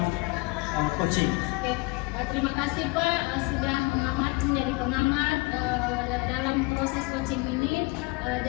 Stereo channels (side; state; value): right; quieter; 27.9 dB